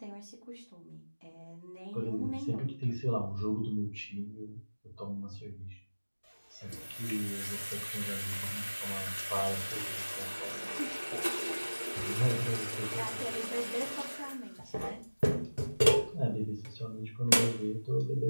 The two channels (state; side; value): inverted; both; correlation -1.00